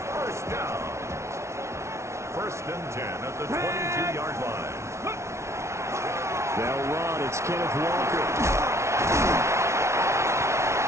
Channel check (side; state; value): left; late; 0.13 ms